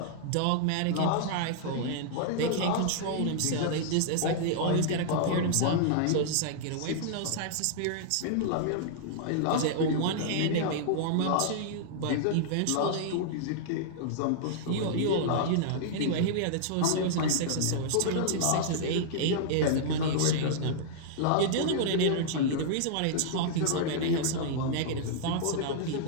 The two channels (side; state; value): both; different; correlation -0.01